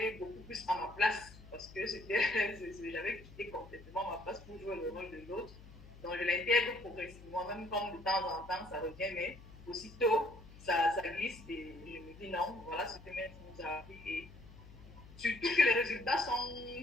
beaucoup plus à ma place parce que j'avais quitté complètement ma place pour jouer le rôle de l'autre. Donc, je l'intègre progressivement, même comme de temps en temps ça revient, mais aussitôt ça glisse et je me dis non, voilà ce que maître nous a appris. Et surtout que les résultats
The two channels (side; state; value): left; noise; hum, 18 dB below the sound